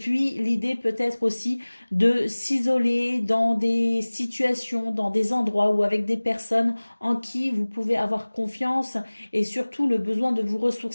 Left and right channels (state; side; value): inverted; both; correlation -1.00